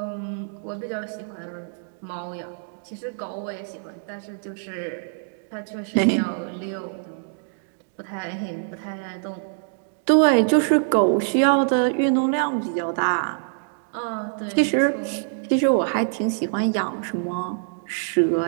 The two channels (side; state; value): left; silent; digital silence